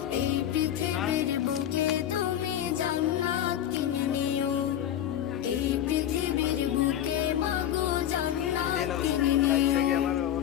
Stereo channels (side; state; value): right; quieter; 11.1 dB